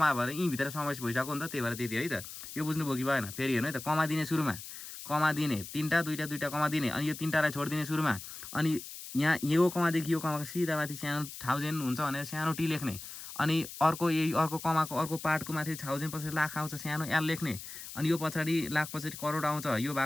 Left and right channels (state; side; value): noise; left; hiss, 11 dB below the sound